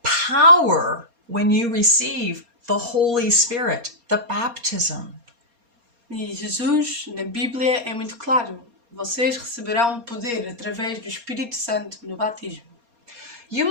power when you receive the Holy Spirit, the baptism. E Jesus, na Bíblia, é muito claro. vocês receberão poder através do Espírito Santo no batismo. You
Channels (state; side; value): late; left; 4.3 ms